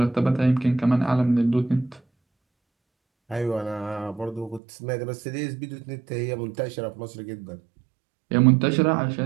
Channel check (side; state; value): left; drops out; at 4.6 s